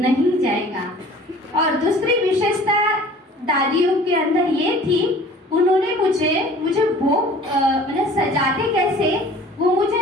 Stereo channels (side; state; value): both; normal; correlation 0.48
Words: जाएगा। और दूसरी विशेषता दादियों के अंदर ये थी, उन्होंने मुझे भोग मतलब सजाते कैसे वो मुझे